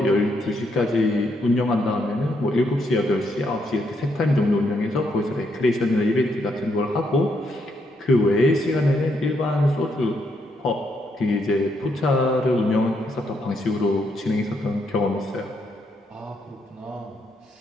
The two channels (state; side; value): normal; both; correlation 0.76